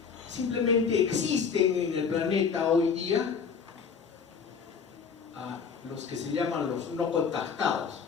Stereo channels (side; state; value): right; quieter; 6.1 dB